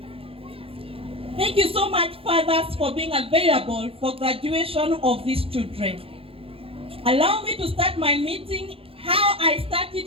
Thank you so much, fathers, for being available for graduation of these children. Allow me to start my meeting how I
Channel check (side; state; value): left; late; 0.27 ms